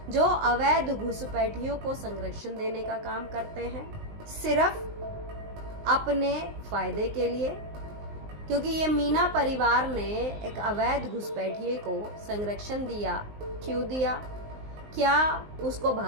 जो अवैध घुसपैठियों को संरक्षण देने का काम करते हैं, सिर्फ अपने फायदे के लिए। क्योंकि ये मीना परिवार ने एक अवैध घुसपैठिए को संरक्षण दिया। क्यों दिया? क्या उसको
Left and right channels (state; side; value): late; left; 19 ms